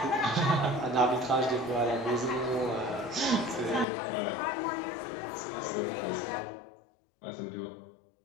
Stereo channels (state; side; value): drops out; right; at 3.9 s